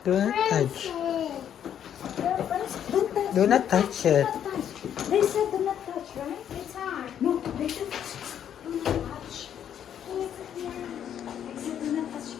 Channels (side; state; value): right; quieter; 9.5 dB